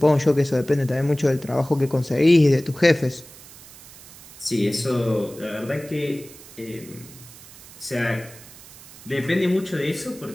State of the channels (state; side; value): noise; right; hiss, 19 dB below the sound